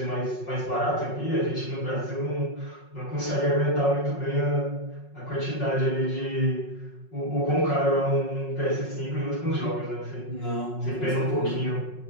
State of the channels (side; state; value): right; late; 5.5 ms